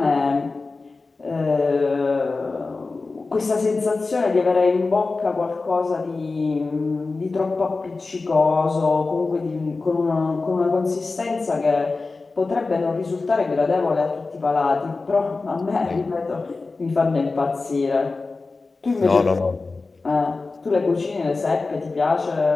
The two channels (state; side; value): quieter; right; 3.8 dB